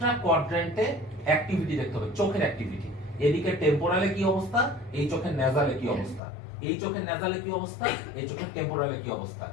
কোয়াড্রেন্টে অ্যাক্টিভিটি দেখতে হবে, চোখের অ্যাক্টিভিটি। এদিকে টেম্পোরালে কি অবস্থা, এই চোখের নেজালে কি অবস্থা, এই চোখের নেজালে কি অবস্থা, এই চোখের টেম্পোরালে কি অবস্থা,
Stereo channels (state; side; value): drops out; right; at 6.2 s